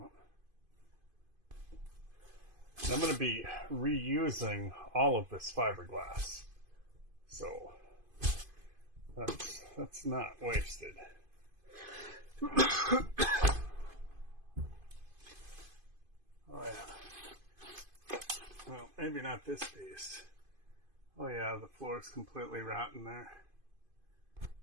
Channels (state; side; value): late; left; 2.5 ms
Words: I'm going to be reusing all of this fiberglass, so that's not wasted. Oh yeah. Well, maybe not this piece. Oh yeah, the floor is completely rotten there.